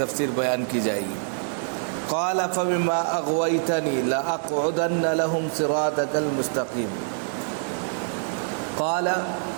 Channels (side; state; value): left; silent; 57 dB below the other